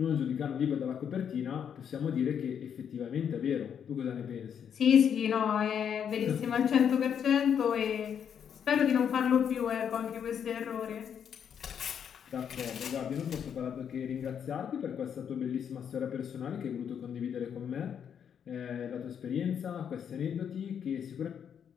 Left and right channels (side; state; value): right; quieter; 8.1 dB